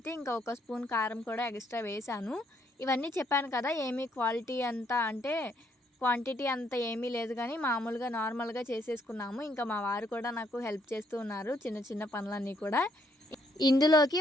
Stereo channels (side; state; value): both; normal; correlation 0.71